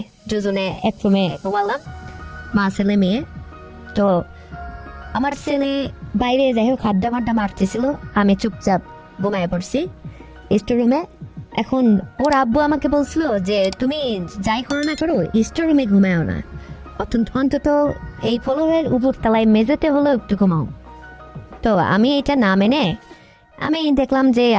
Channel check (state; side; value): identical; both; correlation 1.00